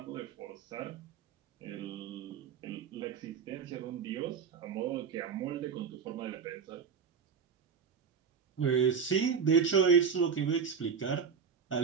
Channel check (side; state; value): left; quieter; 6.4 dB